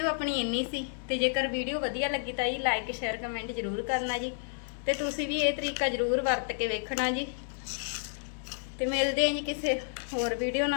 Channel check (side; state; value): right; silent; 56 dB below the other